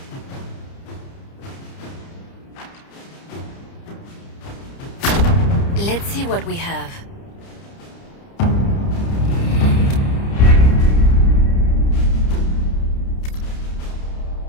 Let's see what we have.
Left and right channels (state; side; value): late; right; 30 ms